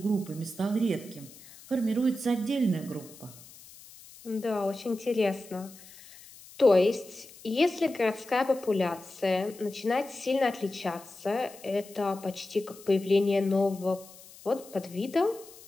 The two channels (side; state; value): left; noise; hiss, 20 dB below the sound